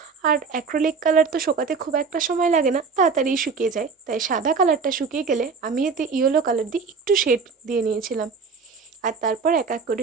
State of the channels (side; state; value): left; quieter; 5.1 dB